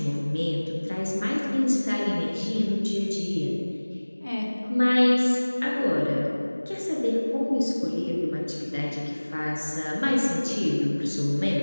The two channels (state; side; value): inverted; both; correlation -1.00